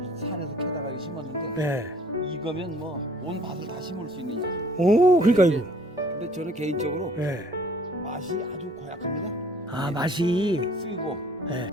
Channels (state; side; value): normal; both; correlation 0.56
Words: 산에서 캐다가 이거 심었는데 예. 이거면 뭐 온 밭을 다 심을 수 있는 약이에요. 오, 그러니까 근데- 이거. 근데 저는 개인적으로 예. 맛이 아주 고약합니다. 아, 맛이. 쓰고 예.